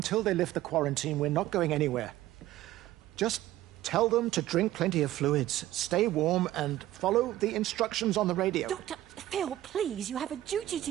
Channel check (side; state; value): left; quieter; 14.7 dB